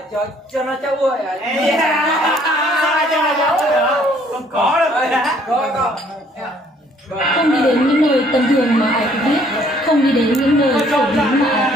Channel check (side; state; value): both; normal; correlation 0.62